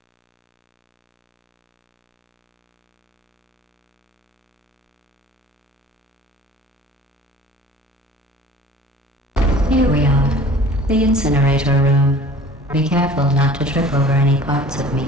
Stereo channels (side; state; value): both; normal; correlation 0.46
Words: Here we are, the incinerator room. Be careful not to trip over any parts of me